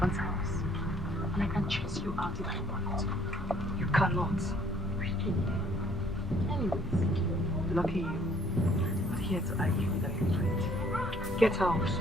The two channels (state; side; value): normal; both; correlation 0.61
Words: house. And I can chase you out if I want. You cannot. Really? Anyways, lucky you. I'm not here to argue with an infant. Get out.